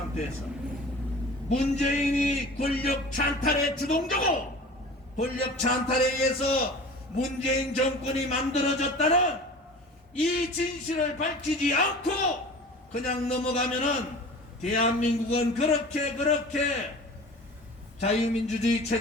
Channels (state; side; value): normal; both; correlation 0.40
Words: 문재인이 권력 찬탈의 주동자고 권력 찬탈에 의해서 문재인 정권이 만들어졌다는 이 진실을 밝히지 않고 그냥 넘어가면은 대한민국은 그렇게 자유민주주의